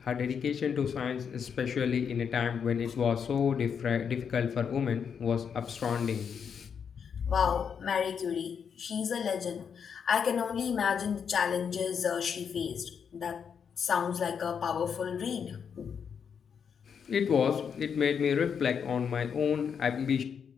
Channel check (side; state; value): right; quieter; 7.0 dB